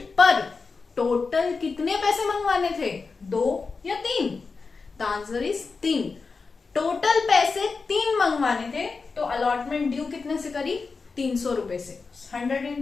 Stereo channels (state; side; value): quieter; right; 4.5 dB